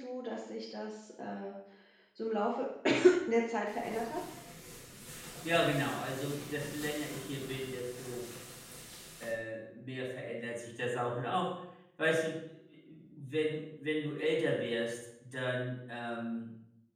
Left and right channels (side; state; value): both; identical; correlation 1.00